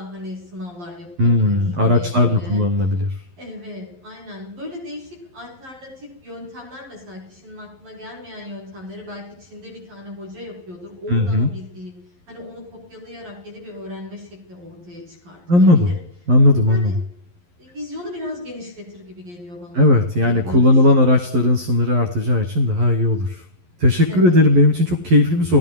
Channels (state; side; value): late; left; 11 ms